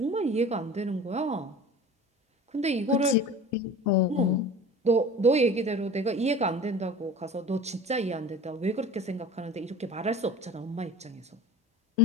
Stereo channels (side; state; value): both; normal; correlation 0.38